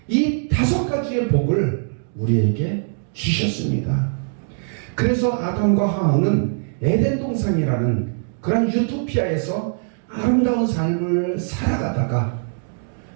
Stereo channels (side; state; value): left; silent; 62 dB below the other